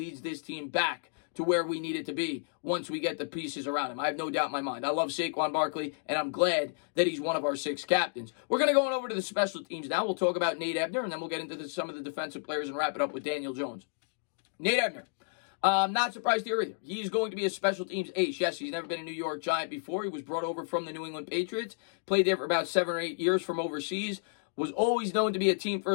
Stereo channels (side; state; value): right; silent; digital silence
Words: this team back to where we need it to be once we get the pieces around him. I have no doubt in my mind. I love Saquon Barkley, and I'm glad that he's one of our 6 captains. We're going to go on over to the special teams now. We'll talk about Nate Ebner, and then we'll get into some of the defensive players and wrap it up with Daniel Jones. Nate Ebner. Not surprised here either. He's going to be a special teams ace. Yes, he's never been a New York Giant before. He was brought over from the New England Patriots. Played there for about 7 or 8 years from overseas. Was always known to be a